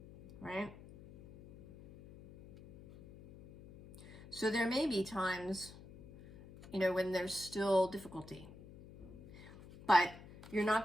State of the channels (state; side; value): noise; left; hum, 18 dB below the sound